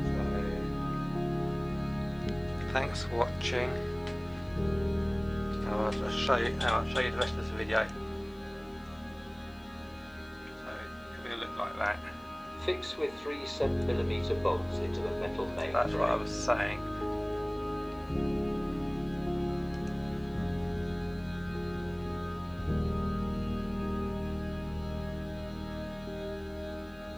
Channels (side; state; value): left; noise; hiss, 30 dB below the sound